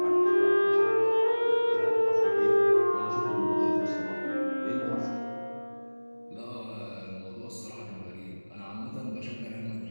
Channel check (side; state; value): both; inverted; correlation -1.00